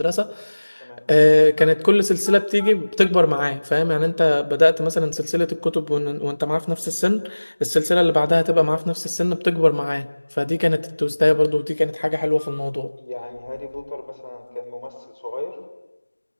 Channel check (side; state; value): both; inverted; correlation -1.00